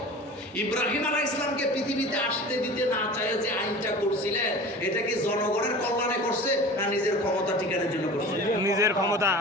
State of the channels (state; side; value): normal; both; correlation 0.38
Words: ইব্রাহিম আলাইহিস সালামকে পৃথিবীতে আসতে দিতে না চায় যে আইনটা করছিলেন, এটা কি জনগণের কল্যাণে করছে না নিজের ক্ষমতা টিকানোর জন্য করছে? নিজের ক্ষমতা।